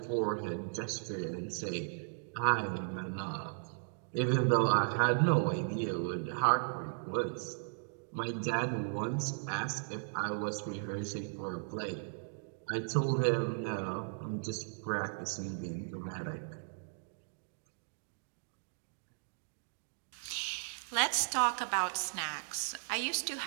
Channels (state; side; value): silent; left; digital silence